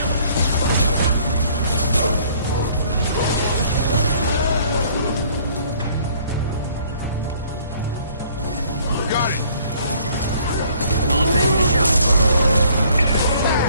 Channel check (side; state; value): both; inverted; correlation -0.59